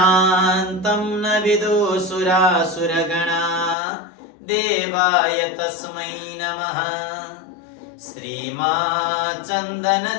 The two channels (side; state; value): right; drops out; at 3.8 s